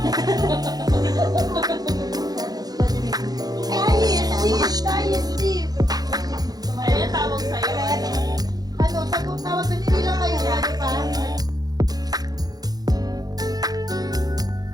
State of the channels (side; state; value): left; late; 0.19 ms